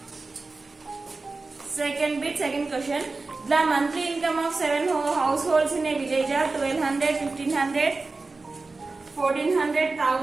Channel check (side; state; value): left; quieter; 3.7 dB